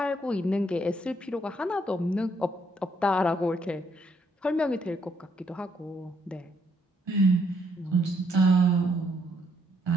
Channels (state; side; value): normal; both; correlation 0.72